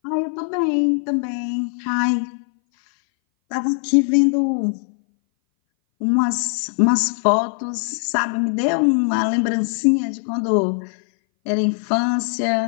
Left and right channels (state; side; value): silent; right; 60 dB below the other